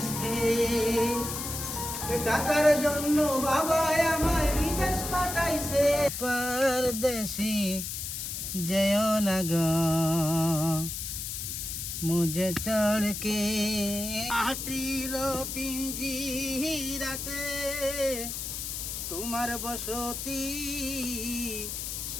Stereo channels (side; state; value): left; noise; hiss, 5 dB below the sound